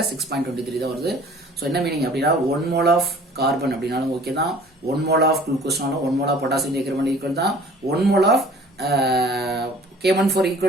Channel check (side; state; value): both; normal; correlation 0.50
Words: 6.23 தான் வருது. ஸோ என்ன மீனிங் அப்படின்னா 1 mole of கார்பன் அப்படின்னாலும் ஓகே தான், 1 mole of குளுக்கோஸ்னாலும் 1 mole of potassium dichromate equal தான், 1 mole of K14